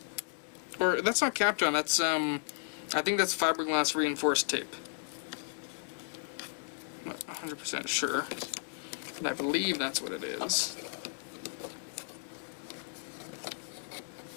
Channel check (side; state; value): right; silent; 55 dB below the other